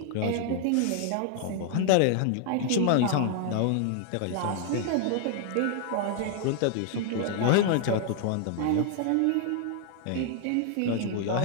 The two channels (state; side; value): different; both; correlation 0.00